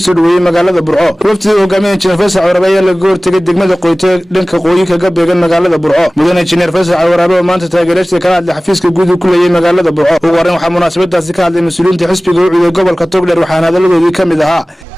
dhaweeyay magaalada Burco. Wafdiga hogaaminaya injineer Faysal Cali Waraabe ayaa laga hortagay degmada Qoyte dhanka qoyi kaga beegan magaalada Burco. mudane injineer Faysal Cali Waraabe oo maanta taageerayay kala hadlay xafiiska guud ku leeyahay magaalada Burco. ugu horeyn waxaa munaasabadaasi ka hadlay mas'uuliyiinta xisbiga u ciiday gobolka Togdheer waxaana hadaladoodii kamid ahaa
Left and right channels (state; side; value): normal; both; correlation 0.98